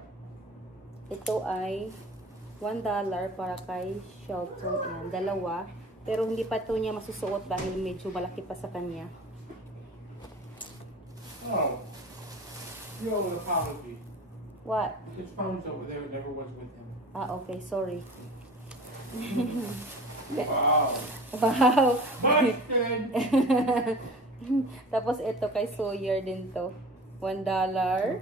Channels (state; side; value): normal; both; correlation 0.40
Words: $1 para kay Shelton. Ayan, dalawa. Pero hindi pa ito niya masusuot dahil medyo malaki pa sa kanya. Oh. You owe an apology. What? His phone's over there. It never was with him. Ah, okay. Sorry. Wow. Wow. Busted. Tapos ito kay Sawyer din to. $1.